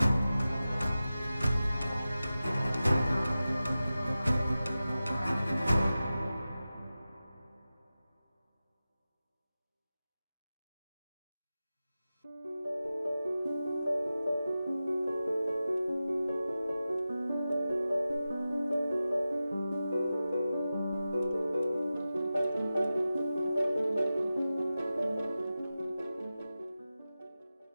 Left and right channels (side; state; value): both; inverted; correlation -0.94